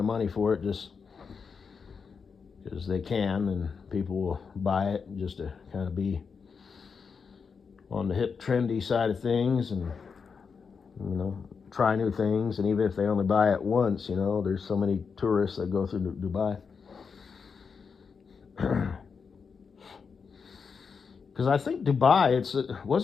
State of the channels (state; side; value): quieter; right; 5.7 dB